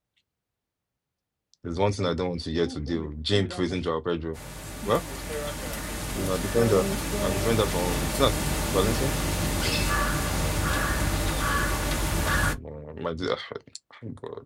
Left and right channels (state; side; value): identical; both; correlation 1.00